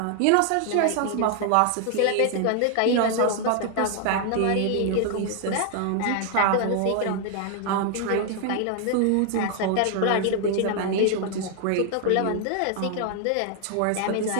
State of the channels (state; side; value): different; both; correlation 0.00